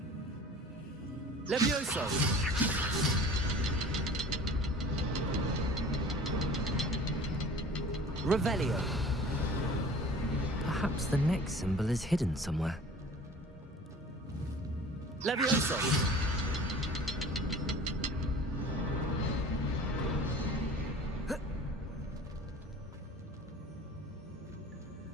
Levioso! Revelio. Perhaps the next symbol is hidden somewhere. Levioso!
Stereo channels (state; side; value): normal; both; correlation 0.44